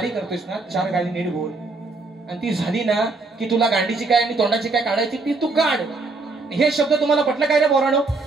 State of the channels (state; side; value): quieter; left; 3.6 dB